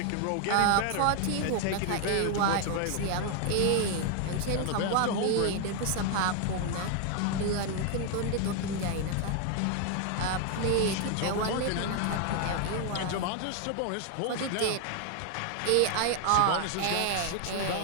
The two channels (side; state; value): both; different; correlation 0.00